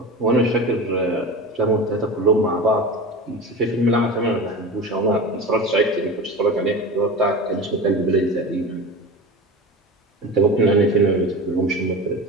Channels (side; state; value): both; normal; correlation 0.30